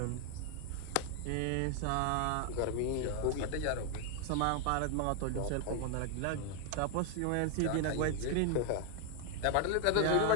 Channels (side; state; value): both; different; correlation 0.00